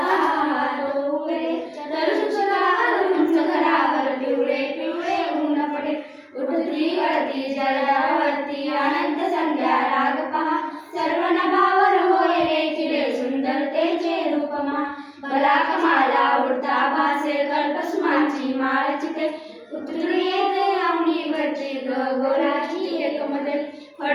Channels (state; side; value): identical; both; correlation 1.00